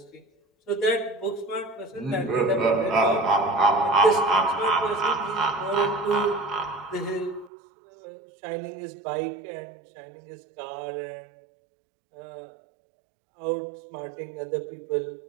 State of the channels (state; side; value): drops out; left; at 7.5 s